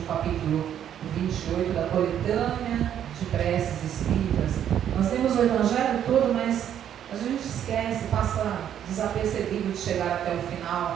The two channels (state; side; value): quieter; left; 9.9 dB